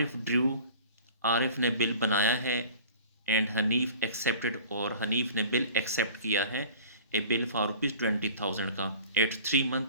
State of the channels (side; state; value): both; inverted; correlation -0.44